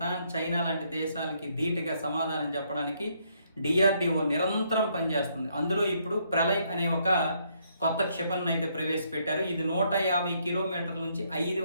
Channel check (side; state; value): both; inverted; correlation -0.72